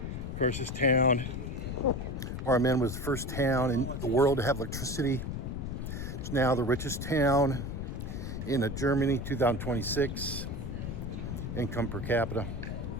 course, this town where I'm in was the first town in the world to have electricity. It's now the richest town in Germany, 2026, income per capita.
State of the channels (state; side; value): noise; left; rumble, 5 dB below the sound